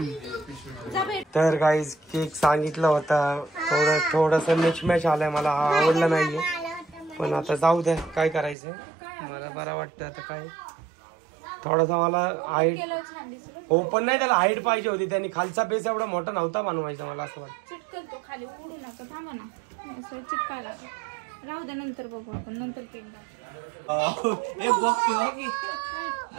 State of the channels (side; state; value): left; drops out; at 8.6 s